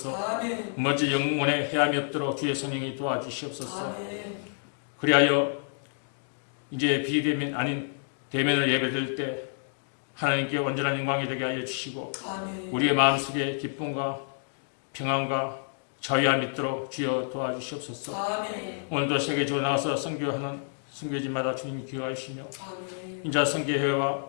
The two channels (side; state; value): right; silent; digital silence